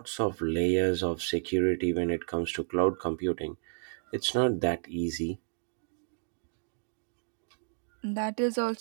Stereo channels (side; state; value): left; silent; digital silence